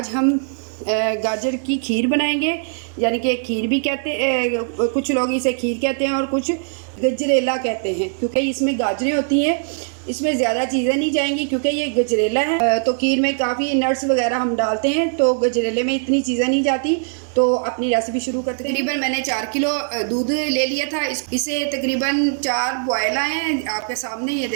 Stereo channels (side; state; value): left; silent; 65 dB below the other